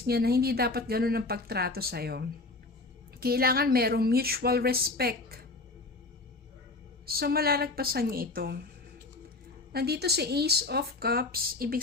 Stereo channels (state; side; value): quieter; right; 3.3 dB